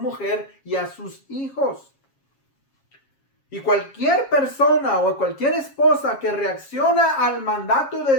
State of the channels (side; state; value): right; late; 7.3 ms